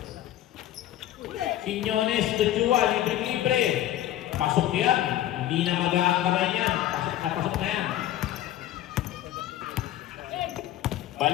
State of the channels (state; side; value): quieter; right; 13.0 dB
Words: Quiñones to Chua. Libre-libre. Pasok yan. Hindi na mag-aakabay yan. Pasok na yan.